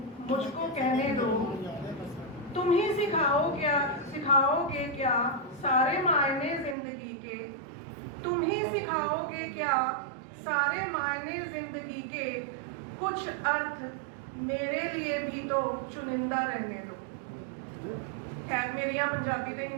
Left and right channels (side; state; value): left; drops out; at 6.8 s